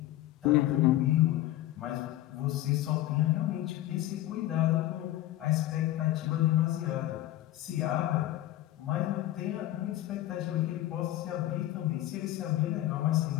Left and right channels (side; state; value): right; quieter; 14.7 dB